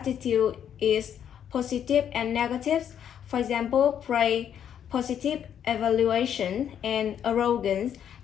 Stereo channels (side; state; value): right; quieter; 9.1 dB